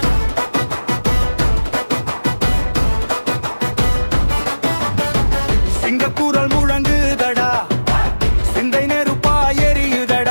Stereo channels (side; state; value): both; inverted; correlation -1.00